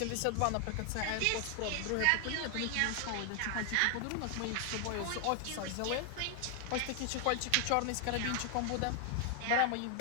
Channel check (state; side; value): different; both; correlation 0.00